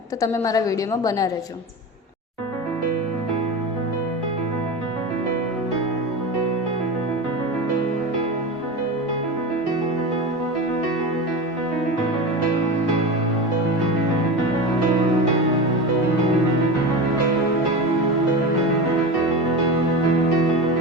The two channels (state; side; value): normal; both; correlation 0.25